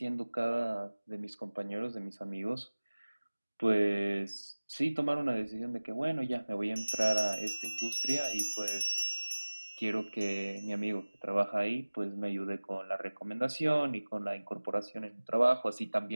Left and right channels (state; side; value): inverted; both; correlation -1.00